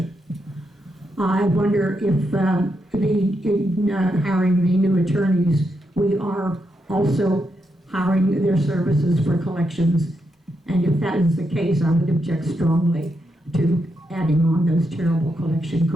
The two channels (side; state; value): both; normal; correlation 0.82